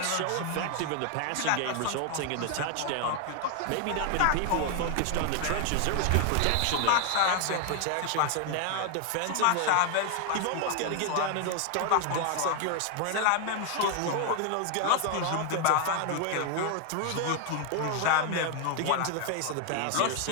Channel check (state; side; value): different; both; correlation 0.00